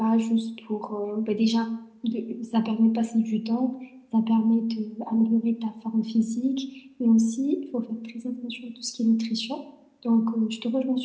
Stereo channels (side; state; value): both; identical; correlation 1.00